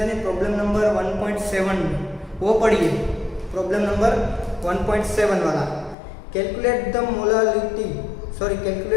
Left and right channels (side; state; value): right; drops out; at 6.0 s